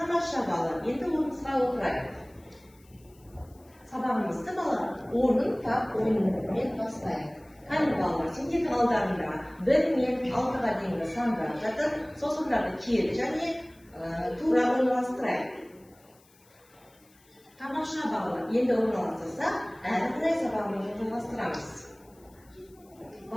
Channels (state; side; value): noise; left; hiss, 30 dB below the sound